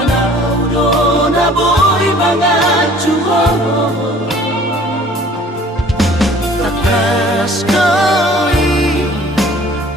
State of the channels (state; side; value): normal; both; correlation 0.52